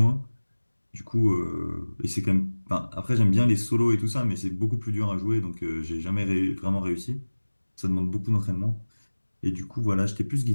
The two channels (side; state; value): both; inverted; correlation -1.00